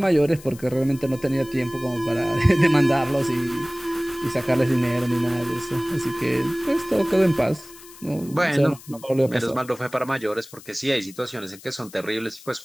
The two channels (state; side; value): noise; left; hiss, 20 dB below the sound